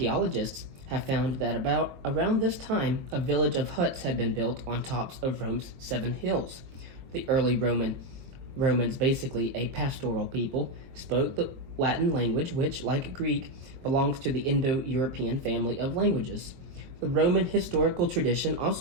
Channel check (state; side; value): late; left; 22 ms